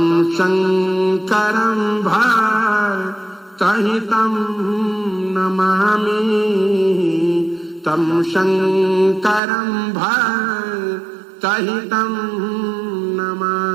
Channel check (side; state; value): left; drops out; at 9.4 s